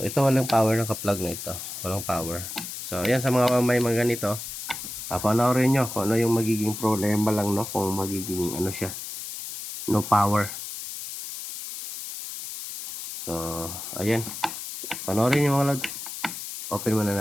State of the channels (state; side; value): noise; left; hiss, 8 dB below the sound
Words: ito walang power ng ka-plug na ito. Walang power. So, ayan sa mga may mga ganito. Panoorin nyo kung ano yung magiging problema lang, no? Kung magiging ano siya. No power. So, ayan. Panoorin nyo mga lads. Open muna